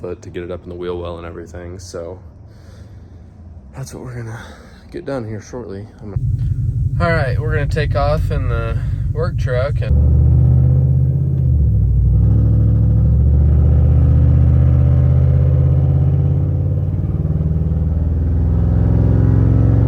to get it up in the wheel well and everything, so that's what we're gonna get done here shortly. All right, we're gonna take off in the work truck and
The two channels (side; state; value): both; identical; correlation 1.00